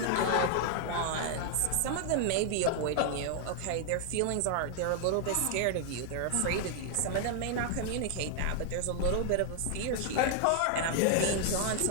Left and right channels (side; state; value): both; different; correlation 0.00